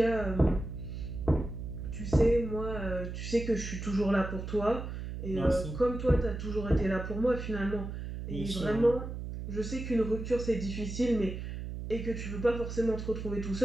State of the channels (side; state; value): right; noise; hum, 7 dB below the sound